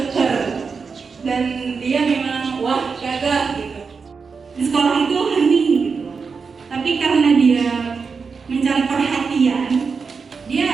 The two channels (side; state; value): left; quieter; 5.2 dB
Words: dan dia memang wah gagah gitu. Di sekolah itu hening gitu. Tapi karena dia mencari perhatian,